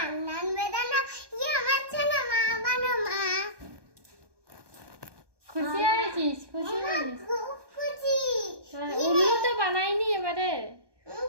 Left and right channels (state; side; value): late; left; 1.2 ms